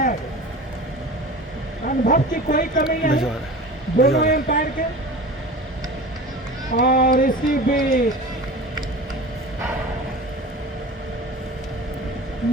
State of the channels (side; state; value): both; normal; correlation 0.35